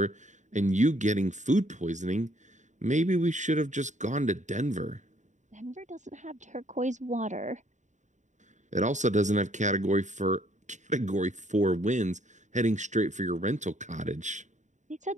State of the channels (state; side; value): late; left; 0.35 ms